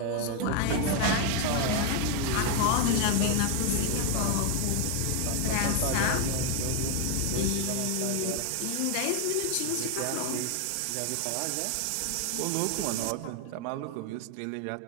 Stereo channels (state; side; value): different; both; correlation 0.01